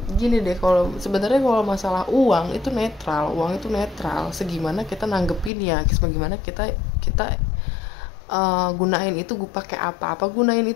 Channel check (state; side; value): drops out; right; at 5.5 s